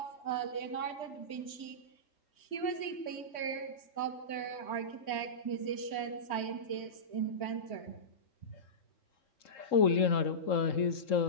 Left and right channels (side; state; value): right; late; 3.1 ms